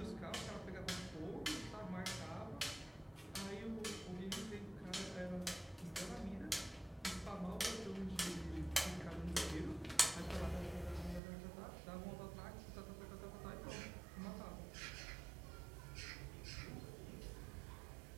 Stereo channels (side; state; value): left; drops out; at 11.2 s